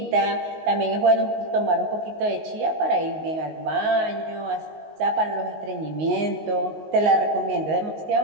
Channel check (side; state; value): left; late; 19 ms